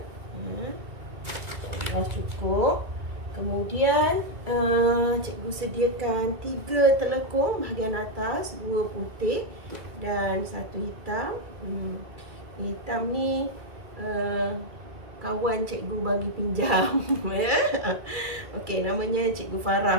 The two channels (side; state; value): left; late; 2.3 ms